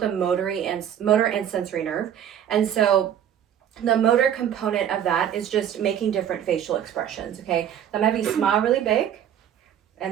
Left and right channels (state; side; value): quieter; left; 9.8 dB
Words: a motor and sensory nerve, and so the motor component of that is just making different facial expressions, okay? So I'm gonna have you smile really big,